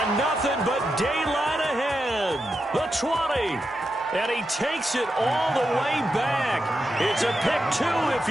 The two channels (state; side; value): normal; both; correlation 0.87